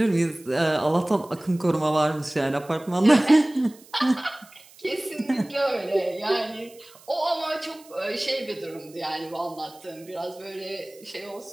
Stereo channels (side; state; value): right; noise; hiss, 24 dB below the sound